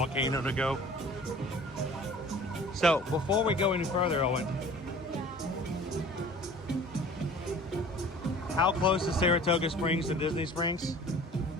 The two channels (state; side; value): normal; both; correlation 0.46